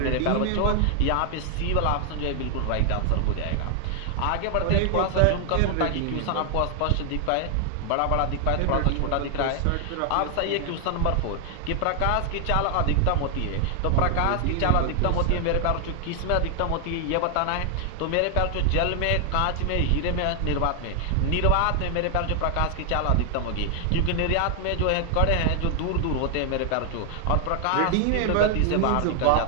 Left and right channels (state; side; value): different; both; correlation 0.00